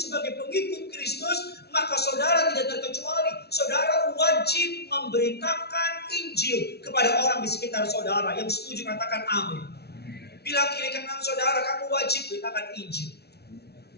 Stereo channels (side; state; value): right; late; 0.48 ms